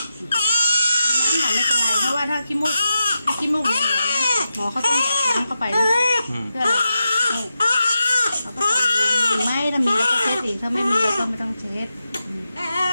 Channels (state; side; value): inverted; both; correlation -0.88